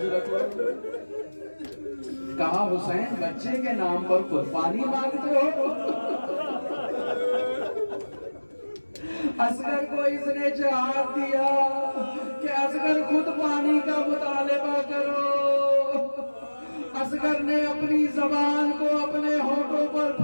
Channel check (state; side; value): inverted; both; correlation -1.00